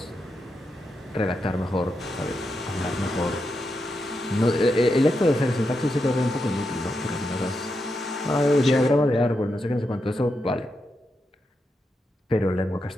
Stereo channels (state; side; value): normal; both; correlation 0.85